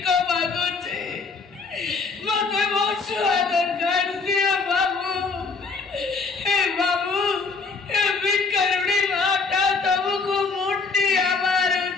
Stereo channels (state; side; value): quieter; right; 4.4 dB